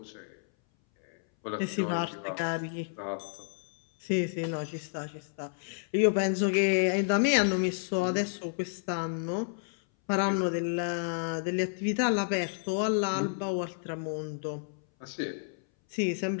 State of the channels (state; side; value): silent; right; 57 dB below the other